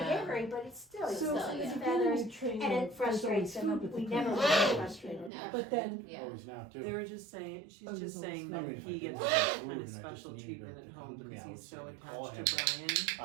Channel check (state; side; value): drops out; left; at 5.3 s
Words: aviary, but it's still, it's So still yeah. his it's feathers, getting trained and on it frustrates someone's him. food, but We the never parents really don't. frustrated him. But then, Yeah. Always now too. They were just saying, she's Oh, just there's saying I that mean, if I he did gets want food kind and of I just special needed treatment it to at come home to me, because I would he's say so call attached to him.